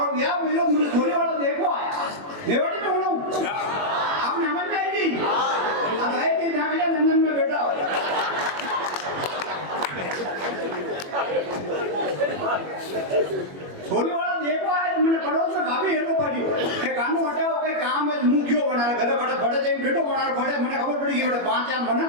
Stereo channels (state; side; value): late; left; 21 ms